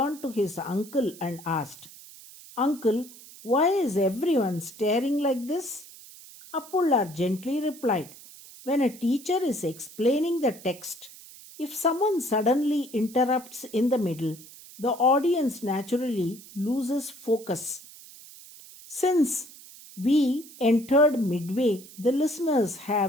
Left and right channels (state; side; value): noise; right; hiss, 19 dB below the sound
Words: to his uncle and asked, "Uncle, why is everyone staring like this?" Appullar gently replied, "When a teacher is explaining the text, if someone suddenly interrupts in the middle, the audience naturally loses focus. Since we entered midway, the listeners